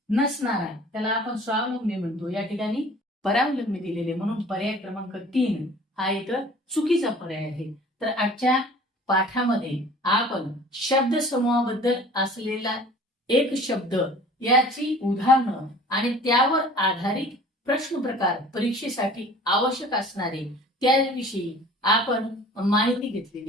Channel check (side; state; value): both; normal; correlation 0.47